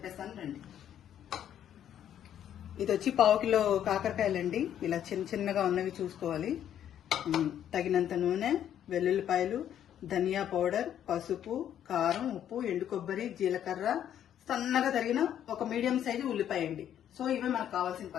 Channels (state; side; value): quieter; right; 10.2 dB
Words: రండి. ఇది వచ్చి 1/2 కిలో కాకరకాయలండి. ఇలా చిన్న చిన్నగా ఉన్నవి చూసుకోవాలి. తగినంత నూనె, వెల్లుల్లిపాయలు, ధనియా పౌడర్, పసుపు, కారం, ఉప్పు, ఎండు కొబ్బరి, జీలకర్ర, సన్నగా తరిగిన ఒక మీడియం సైజు ఉల్లిపాయ అండి. సో ఇవే మనకు కావాల్సిన